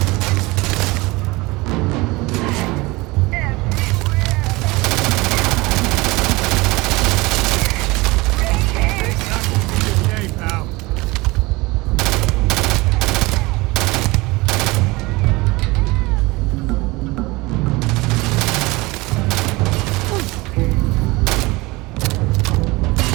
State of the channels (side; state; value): left; quieter; 22.7 dB